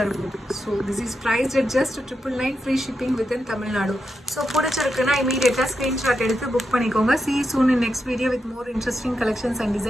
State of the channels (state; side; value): normal; both; correlation 0.86